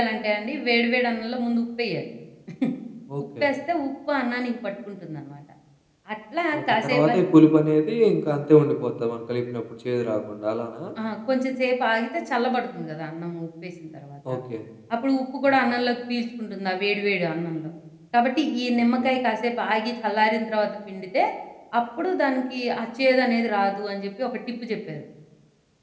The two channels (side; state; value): both; identical; correlation 1.00